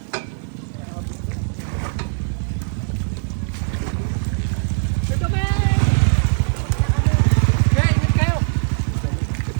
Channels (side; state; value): left; silent; digital silence